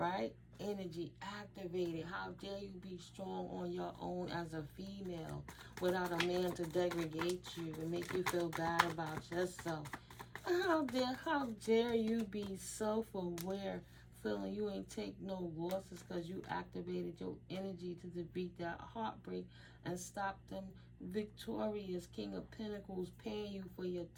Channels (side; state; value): both; identical; correlation 1.00